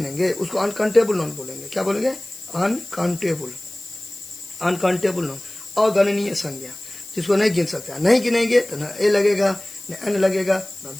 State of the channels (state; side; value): noise; left; hiss, 16 dB below the sound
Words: उसको अनकाउंटेबल नॉन बोलेंगे। क्या बोलेंगे, अनकाउंटेबल नॉन, अगणनीय संज्ञा, जिसको नहीं गिन सकता, नहीं गिनेंगे तो न ए लगेगा, न एन लगेगा, न